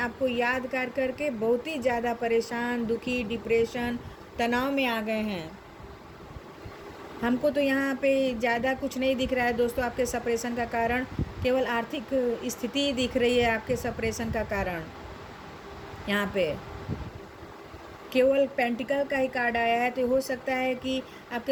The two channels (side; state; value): both; identical; correlation 1.00